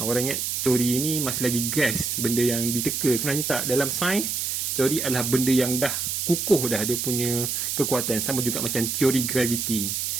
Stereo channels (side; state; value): right; noise; hiss, 1 dB below the sound